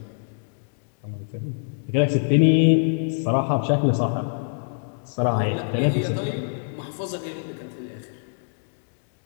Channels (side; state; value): right; silent; digital silence